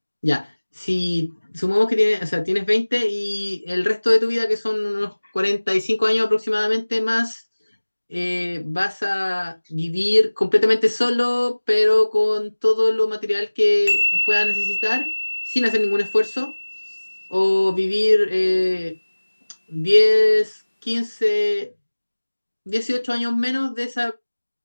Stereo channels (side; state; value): both; inverted; correlation -1.00